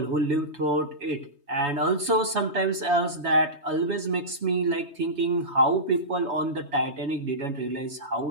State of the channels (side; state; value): left; late; 3.2 ms